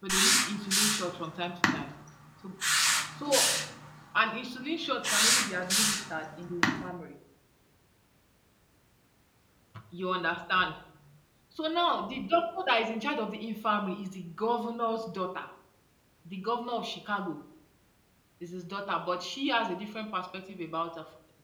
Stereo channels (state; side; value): identical; both; correlation 1.00